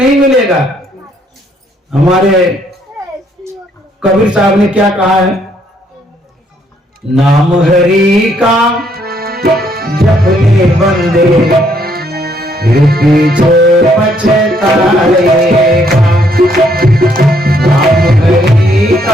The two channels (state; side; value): normal; both; correlation 0.69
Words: मिलेगा। हमारे कबीर साहब ने क्या कहा है? नाम हरि का जपने बंदे फिर पीछे पछताएगा। नाम हरि